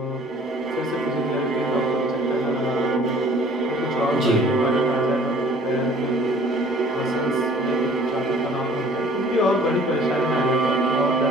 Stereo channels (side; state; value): both; normal; correlation 0.53